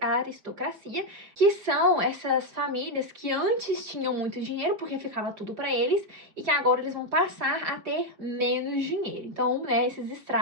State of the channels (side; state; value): left; late; 5.2 ms